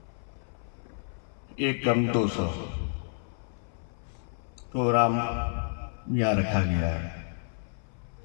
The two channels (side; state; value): right; silent; 56 dB below the other